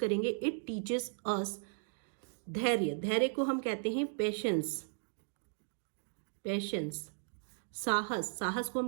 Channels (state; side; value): silent; left; digital silence